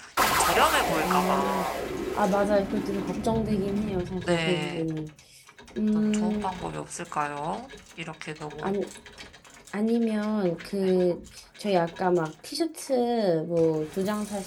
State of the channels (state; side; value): identical; both; correlation 1.00